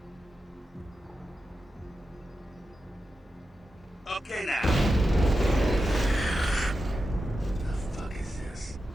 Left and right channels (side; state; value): both; normal; correlation 0.90